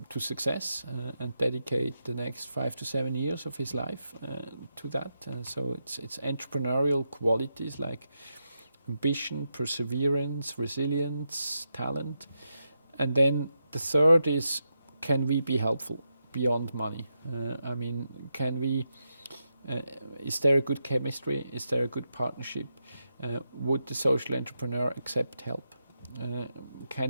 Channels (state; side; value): inverted; both; correlation -0.85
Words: to success and dedicate the next 5 to 7 years of his life to that. So it's entrepreneurial qualities like ambition, perseverance, resilience, talent. And then the third is, can we be helpful beyond money? I mean, is there a good chemistry? Is there a good partnership? Would the social entrepreneur accept help?